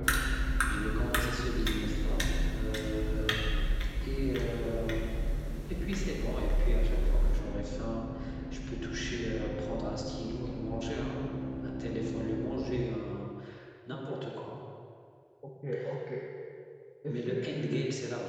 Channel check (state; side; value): identical; both; correlation 1.00